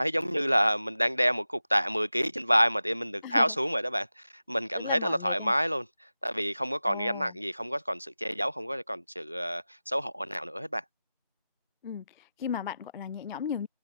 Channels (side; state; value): both; inverted; correlation -0.95